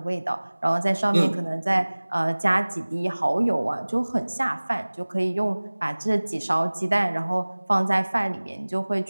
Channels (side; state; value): both; inverted; correlation -1.00